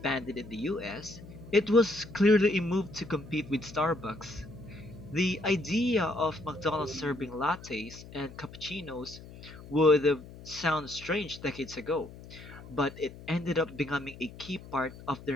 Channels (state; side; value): noise; left; hum, 16 dB below the sound